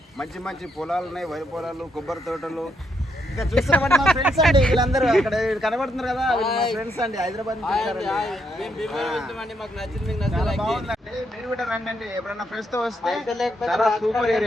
మంచి మంచి పొలాలు ఉన్నాయి, వరి పొలాలు, కొబ్బరి తోటలు. ఇంకా చూస్తున్నామండి మా ఫ్రెండ్స్ అండి వీళ్ళందరూ అక్కడ కనబడుతున్నారు కదా, మా ఫ్రెండ్స్ అండి హైదరాబాద్ నుంచి బాగుందండి. మీరు కూడా రండి, ఎప్పుడన్నా ఫ్రెండ్స్ తో వస్తే చాలా సూపర్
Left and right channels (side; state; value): both; normal; correlation 0.77